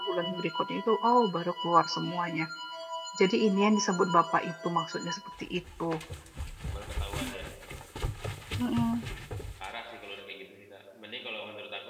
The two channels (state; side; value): identical; both; correlation 1.00